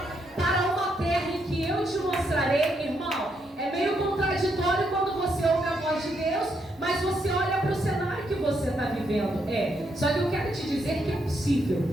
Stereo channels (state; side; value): normal; both; correlation 0.77